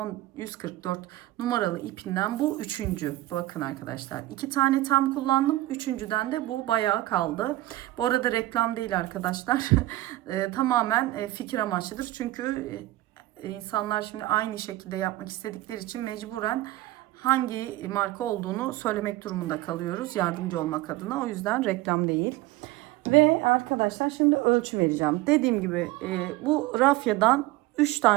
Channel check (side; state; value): left; quieter; 17.2 dB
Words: 144 numaralı ipinden bu üçüncü. Bakın arkadaşlar, iki tane tam kullandım, üçüncüden de bu bayağı kaldı. Bu arada reklam değil arkadaşlar. Tamamen fikir amaçlıdır, çünkü insanlar şimdi aynı şekilde yapmak istedikleri için mecburen hangi marka olduğunu söylemek durumunda kalıyoruz, yardımcı olmak adına. O yüzden reklam değil. Ve arkadaşlar, şimdi ölçü vereceğim. Dediğim gibi bu rafyadan 3